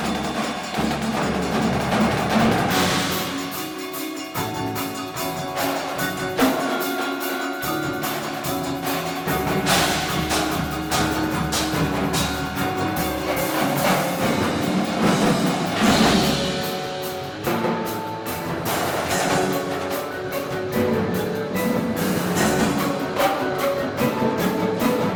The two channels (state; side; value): identical; both; correlation 1.00